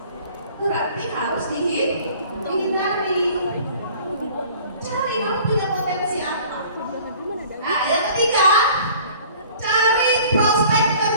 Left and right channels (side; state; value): both; inverted; correlation -0.49